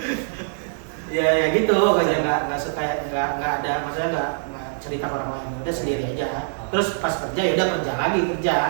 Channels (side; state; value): left; silent; digital silence